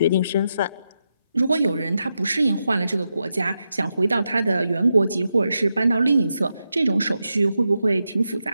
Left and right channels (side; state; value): both; inverted; correlation -0.86